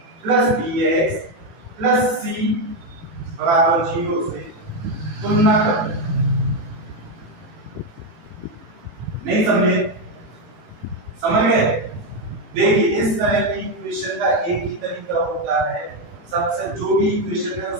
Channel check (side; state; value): left; late; 19 ms